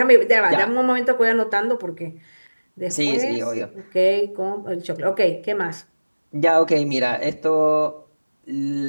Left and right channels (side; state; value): both; inverted; correlation -1.00